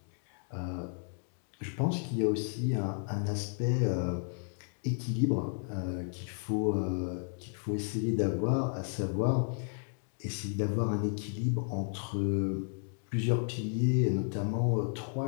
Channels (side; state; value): right; silent; 56 dB below the other